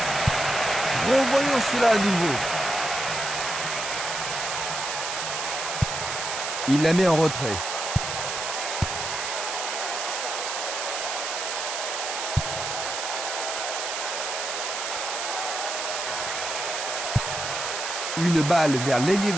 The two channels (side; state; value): right; noise; hiss, 3 dB below the sound